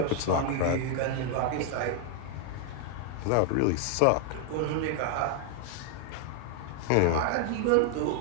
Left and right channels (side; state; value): both; different; correlation 0.00